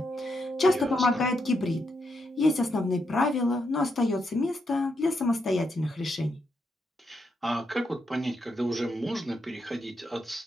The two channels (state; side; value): normal; both; correlation 0.81